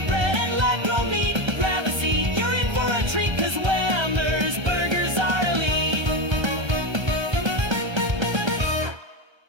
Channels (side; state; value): left; late; 1.3 ms